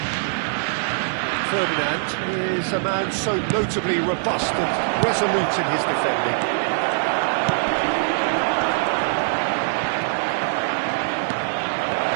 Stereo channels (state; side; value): silent; left; digital silence